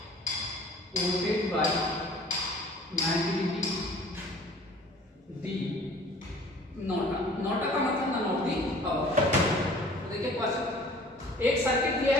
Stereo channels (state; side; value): normal; both; correlation 0.49